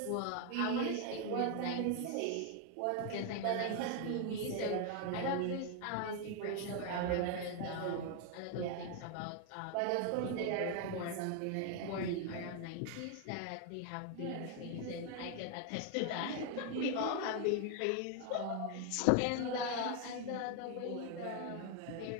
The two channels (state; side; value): different; both; correlation 0.01